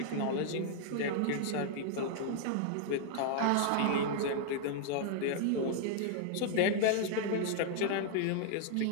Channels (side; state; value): both; different; correlation 0.00